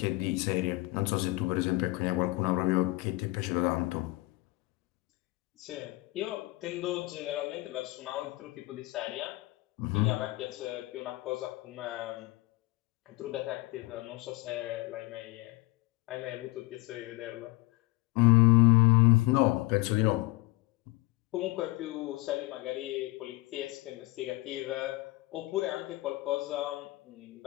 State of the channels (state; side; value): quieter; right; 20.8 dB